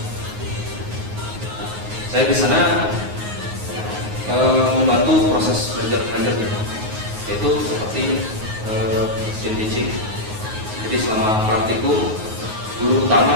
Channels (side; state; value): left; late; 9.5 ms